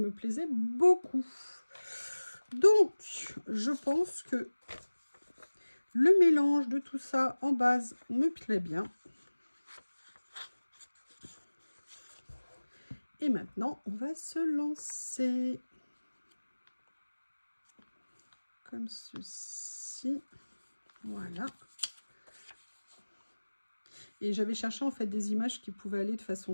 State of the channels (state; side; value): inverted; both; correlation -1.00